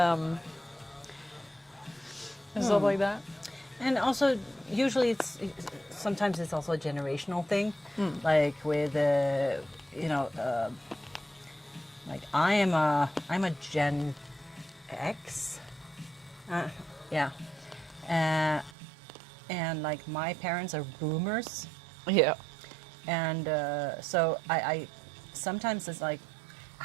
and stuff like that. And also, usually sometimes it's also a generational thing, like with like I'm a Gen X, yeah, and like my parents are boomers, Yeah. and so I sometimes it's like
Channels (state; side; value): drops out; left; at 18.8 s